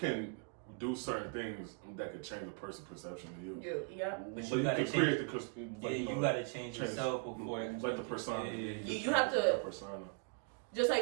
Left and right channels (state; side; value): quieter; left; 39.3 dB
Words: do certain things that could change a person's perception of you. Yeah. But you gotta change. You gotta change yourself before. Like the persona. You have to. The persona. Just